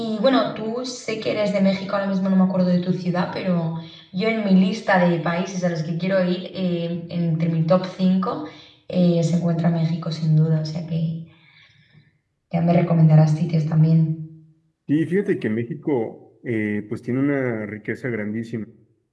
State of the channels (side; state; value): both; identical; correlation 1.00